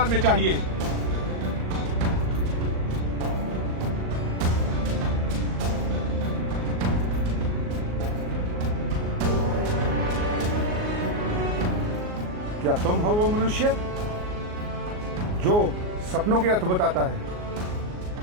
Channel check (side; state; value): left; late; 38 ms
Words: में चाहिए। क्या तुम हो वो मनुष्य जो सपनों के अर्थ बताता है?